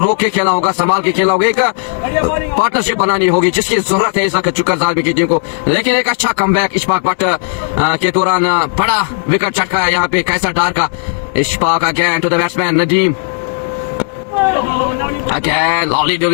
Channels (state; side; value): silent; right; 61 dB below the other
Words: के खेलना होगा, संभाल के खेलना होगा, एक पार्टनरशिप बनानी होगी जिसकी जरूरत है इस वक्त चुकर जालमी की टीम को। लेकिन एक अच्छा कमबैक इशफाक बट के दौरान बड़ा विकेट चटका है यहाँ पे कैसर डार का। Ishfaq again to the batsman Nadeem. Again, lovely